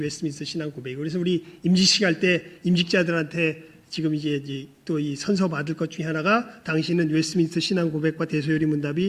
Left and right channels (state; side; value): identical; both; correlation 1.00